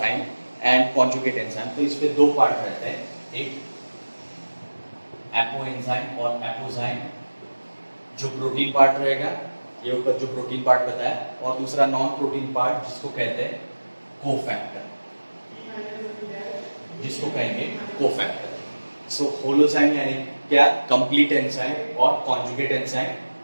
एंड कॉन्जुगेट एंजाइम, तो इसमें दो पार्ट रहते हैं, एक एपो एंजाइम और एपोजाइम जो प्रोटीन पार्ट रहेगा, ये ऊपर जो प्रोटीन पार्ट बताया, और दूसरा नॉन प्रोटीन पार्ट जिसको कहते हैं कोफैक्टर, जिसको कहेंगे कोफैक्टर। सो होलोजाइम यानी क्या, कंप्लीट एंजाइम, और कॉन्जुगेट एंजाइम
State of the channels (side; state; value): both; inverted; correlation -1.00